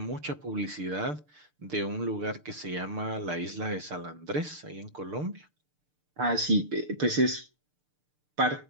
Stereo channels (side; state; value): left; late; 6.7 ms